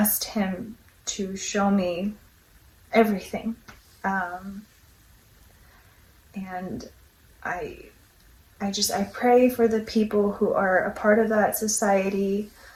him to show me everything. And I pray for the people who are a part of that society.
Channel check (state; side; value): identical; both; correlation 1.00